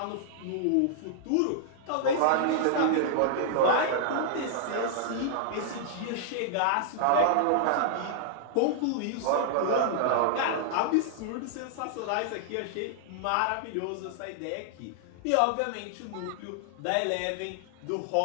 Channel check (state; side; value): different; both; correlation -0.01